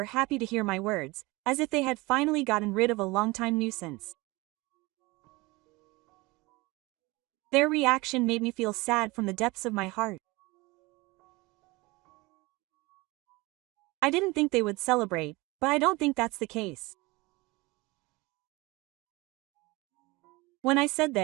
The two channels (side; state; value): left; quieter; 23.0 dB